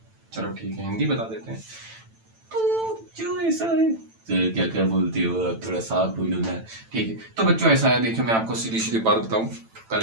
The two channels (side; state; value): left; late; 9.0 ms